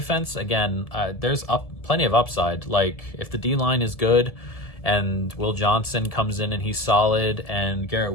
Again, there's plenty of upside. Like if the D-line is good and Will Johnson comes in and he's solid and Garrett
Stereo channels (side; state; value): right; late; 1.7 ms